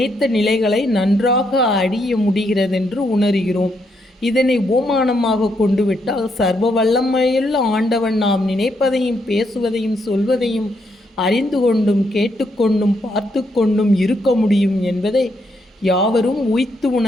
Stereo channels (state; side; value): normal; both; correlation 0.77